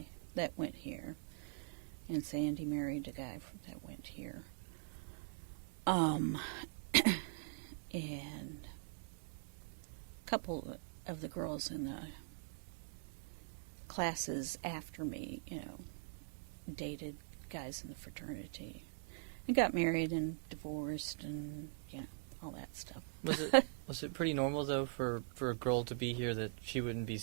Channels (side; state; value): left; silent; digital silence